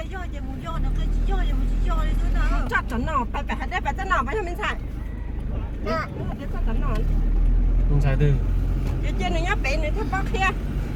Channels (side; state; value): both; identical; correlation 1.00